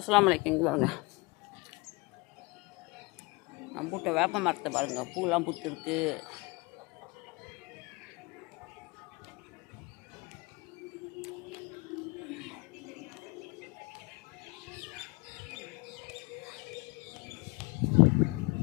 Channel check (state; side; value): quieter; right; 25.5 dB